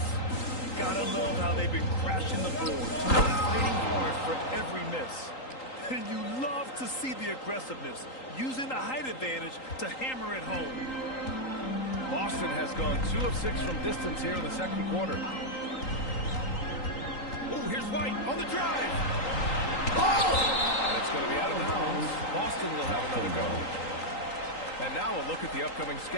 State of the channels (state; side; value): late; right; 3.8 ms